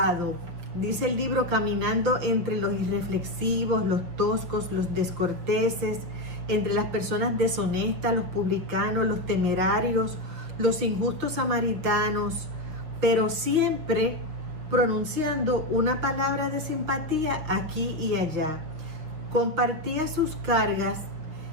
Dice el libro, caminando entre los irreflexivos, los toscos, los descorteses, entre las personas deshonestas, los publicanos, los temerarios, los injustos samaritanos, pero siempre pronunciando una palabra de simpatía aquí y allá. Compartía sus cargas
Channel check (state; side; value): late; left; 6.5 ms